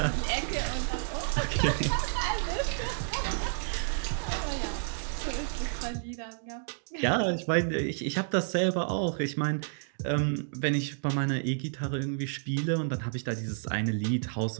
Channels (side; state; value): left; silent; digital silence